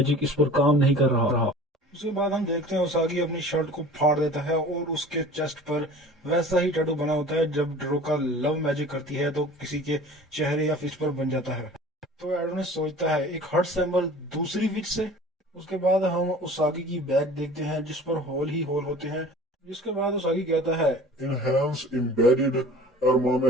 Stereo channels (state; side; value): normal; both; correlation 0.43